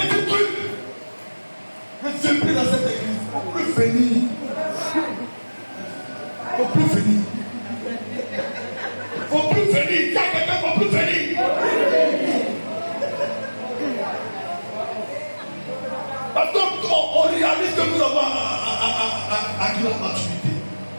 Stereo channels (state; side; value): inverted; both; correlation -1.00